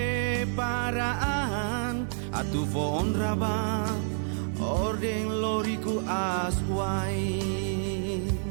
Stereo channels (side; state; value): left; silent; 59 dB below the other